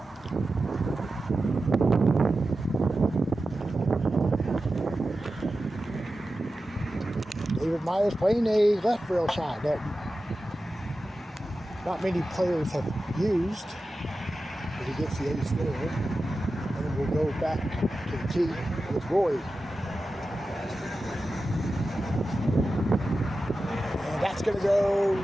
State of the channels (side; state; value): both; normal; correlation 0.93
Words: David Myers playing a left rail shot that not many players have used, but he gets the ace there. And we'll go back to the tee with Roy. And that's going to go